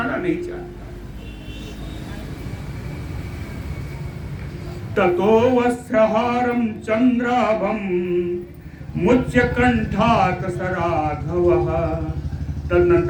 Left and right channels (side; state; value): both; identical; correlation 1.00